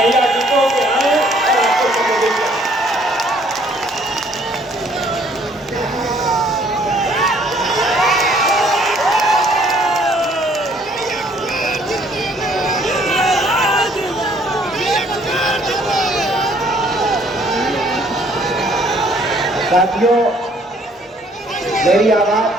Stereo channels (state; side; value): normal; both; correlation 0.62